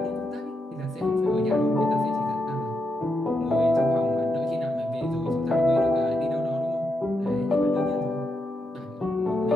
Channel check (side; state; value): both; normal; correlation 0.83